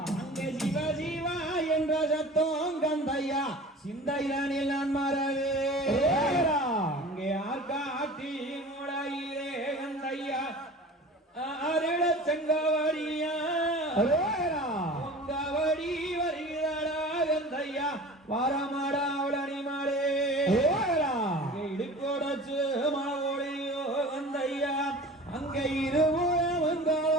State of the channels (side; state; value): both; normal; correlation 0.39